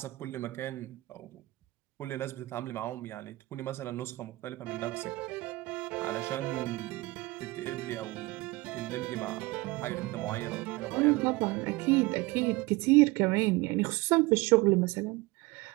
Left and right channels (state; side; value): quieter; left; 21.3 dB